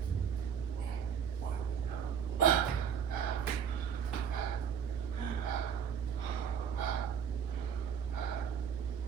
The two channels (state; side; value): quieter; left; 7.7 dB